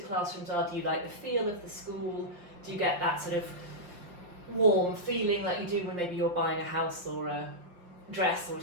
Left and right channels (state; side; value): late; left; 5.9 ms